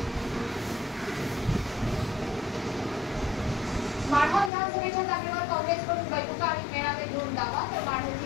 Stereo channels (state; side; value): drops out; right; at 4.5 s